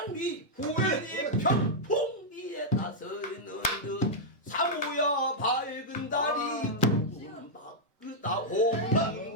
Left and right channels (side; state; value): both; normal; correlation -0.06